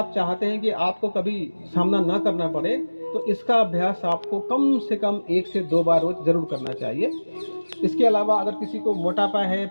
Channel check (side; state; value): both; inverted; correlation -1.00